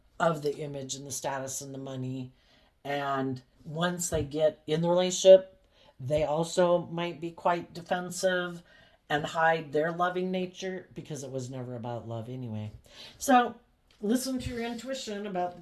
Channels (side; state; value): both; identical; correlation 1.00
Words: of the image and the status and the money. And once they get in the relationship, they also might be quite defensive and hide their loving nature because it was never about love anyway. So listen to your intuition about the